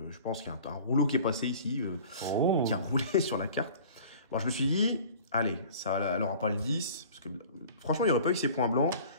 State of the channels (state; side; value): inverted; both; correlation -0.45